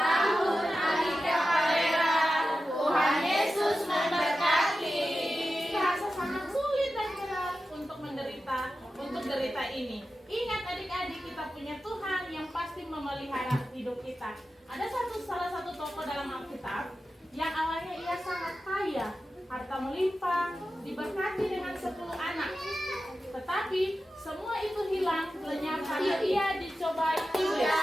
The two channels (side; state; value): both; normal; correlation 0.92